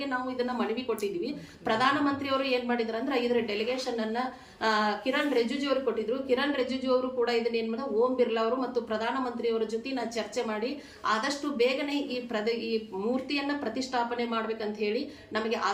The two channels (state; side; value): identical; both; correlation 1.00